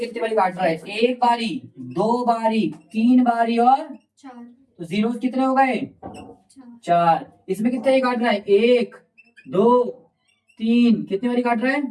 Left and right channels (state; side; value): identical; both; correlation 1.00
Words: कितनी बारी काट रहा है, 1 बारी, 2 बारी, 3 बारी और 4 तो जीरोस कितने हो गए? 4 4। इसमें कितने काट रहा है? 1 2 3, कितनी बारी काट रहा है?